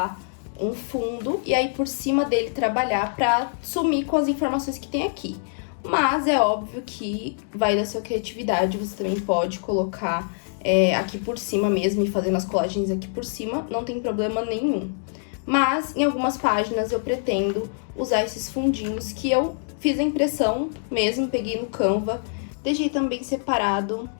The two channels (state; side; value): silent; right; digital silence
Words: um fundo e aí por cima dele trabalhar pra sumir com as informações que tem aqui. Mas é óbvio que vai da sua criatividade, você também pode colocar aqui por cima mesmo e fazendo as colagens aqui por cima, não tem problema nenhum. Mas em algumas páginas eu pretendo usar esses fundinhos que eu fiz a impressão mesmo, peguei no Canva, deixei também separado